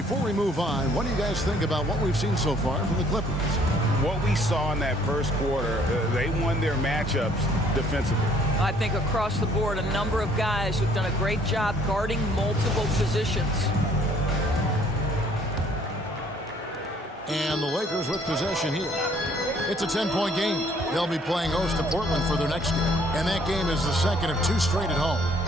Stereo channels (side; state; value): both; normal; correlation 0.61